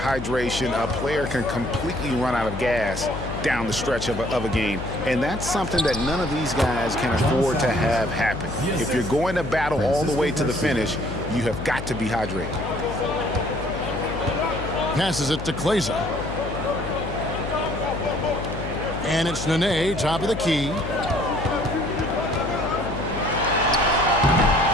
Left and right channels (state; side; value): noise; left; hum, 8 dB below the sound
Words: a player can completely run out of gas down the stretch of a game, and that's something that none of these guys can afford to have happen. If you're going to battle all the way to the finish, you have got to be hydrated. Passes it to Kleza. And it's Nene, top of the key.